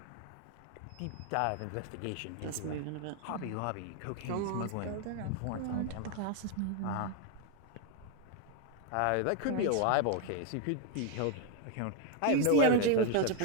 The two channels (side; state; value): both; different; correlation 0.01